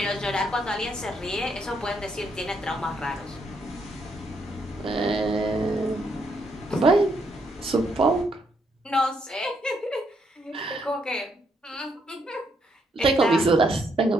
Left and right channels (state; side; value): normal; both; correlation 0.75